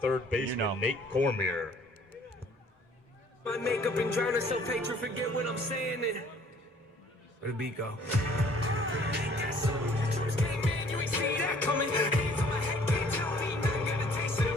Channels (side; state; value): both; normal; correlation 0.57